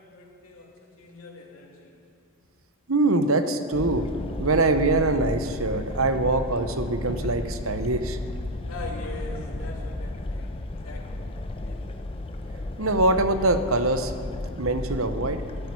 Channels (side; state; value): both; normal; correlation 0.00